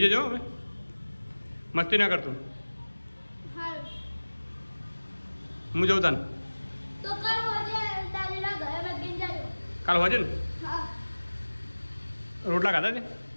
જજો હવે, મસ્તી ના કરતો. હા હું જઉં તાને તો કાલ હોજે દાદીના ઘરે બેસીને જાજો. કાલ હોજે ને હા રોટલા ખાધા છે?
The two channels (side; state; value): both; inverted; correlation -1.00